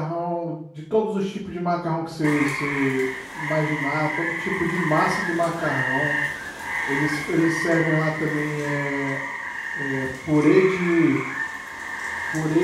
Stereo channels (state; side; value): identical; both; correlation 1.00